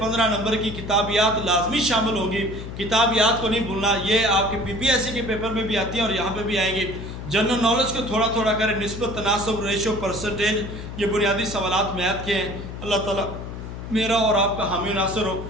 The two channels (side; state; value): left; noise; hum, 9 dB below the sound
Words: نمبر کی کتابیات لازمی شامل ہوگی، کتابیات کو نہیں بھولنا۔ یہ آپ کے PPSC کے پیپر میں بھی آتی ہیں اور یہاں پہ بھی آئیں گی۔ جنرل نالج کو تھوڑا تھوڑا کریں، نسبت، تناسب، ریشو، پرسنٹیج، یہ بنیادی سوالات میتھ کے ہیں۔ اللہ تعالیٰ میرا اور آپ کا حامی و ناصر ہو،